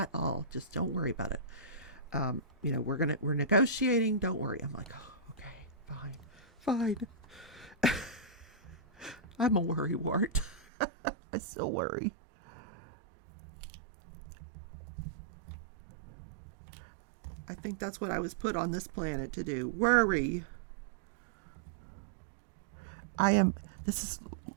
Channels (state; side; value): drops out; left; at 10.7 s